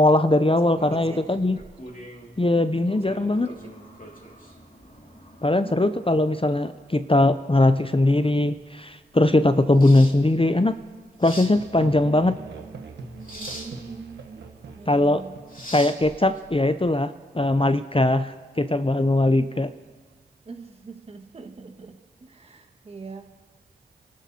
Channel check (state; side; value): normal; both; correlation 0.79